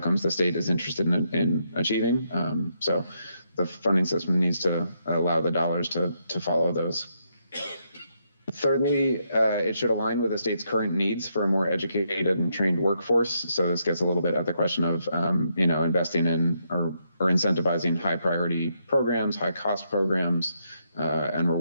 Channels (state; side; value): inverted; both; correlation -0.78